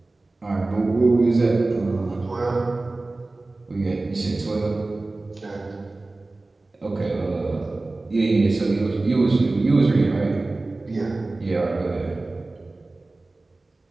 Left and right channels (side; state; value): left; quieter; 3.2 dB